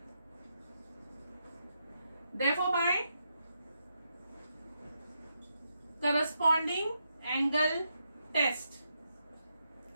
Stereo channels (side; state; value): both; inverted; correlation -0.82